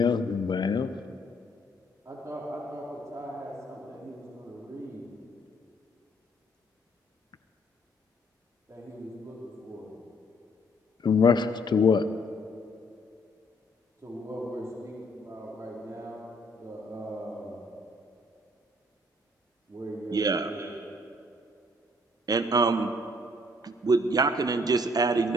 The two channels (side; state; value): both; normal; correlation 0.64